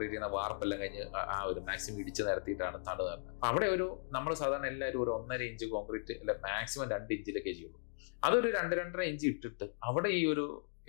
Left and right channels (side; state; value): right; silent; digital silence